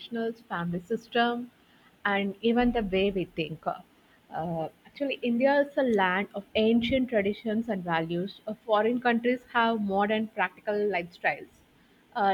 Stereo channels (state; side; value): identical; both; correlation 1.00